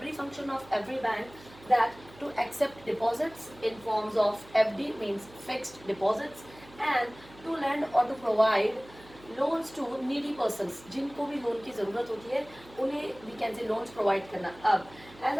function of every bank, that to accept deposits in forms of FD means fixed deposits, and to lend or to provide loans to needy persons, जिनको भी loan की ज़रूरत होती है उन्हें we can say loans provide करना. अब as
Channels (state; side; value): noise; right; hum, 22 dB below the sound